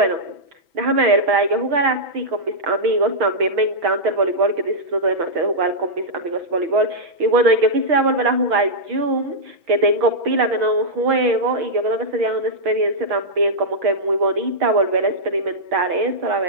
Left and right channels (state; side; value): late; left; 6.1 ms